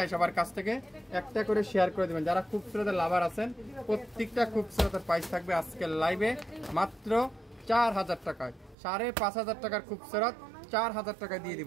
সবার কাছ থেকে, একটা করে শেয়ার করে দেবেন। যারা খুবসুরতের লাভার আছেন প্রত্যেকটা খুবসুরতের প্রাইস থাকবে আজকের লাইভে মাত্র 4000 টাকায়। 5500 টাকার খুবসুরত 4000 টাকায় দিয়ে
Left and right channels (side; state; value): left; drops out; at 8.8 s